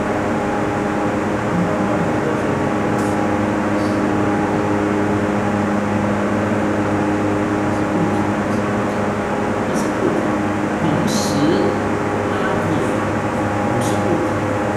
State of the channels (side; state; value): both; identical; correlation 1.00